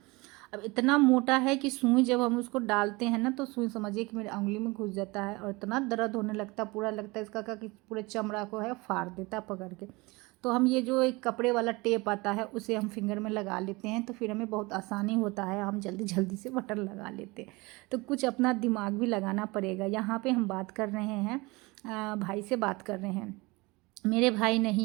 अब इतना मोटा है कि सुई जब हम उसको डालते हैं ना तो सुई समझिए कि मेरे उंगली में घुस जाता है और इतना दर्द होने लगता, पूरा लगता है इसका का कि पूरे चमड़ा को है फाड़ देता पकड़ के। तो हम ये जो एक कपड़े वाला टेप आता है उसे हम फिंगर में लगा लेते हैं, तो फिर हमें बहुत आसानी होता है, हम जल्दी जल्दी से बटन लगा लेते हैं। तो कुछ अपना दिमाग भी लगाना पड़ेगा। यहाँ पे हम बात कर रहे हैं, भाई से बात कर रहे हैं। मेरे भाई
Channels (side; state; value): left; quieter; 24.1 dB